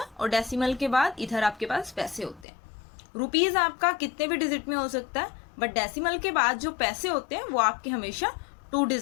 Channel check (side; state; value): right; drops out; at 2.5 s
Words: और डेसिमल के बाद इधर आपके पास पैसे होते हैं. रुपीज आपका कितने भी डिजिट में हो सकता है, बट डेसिमल के बाद जो पैसे होते हैं वो आपके हमेशा 2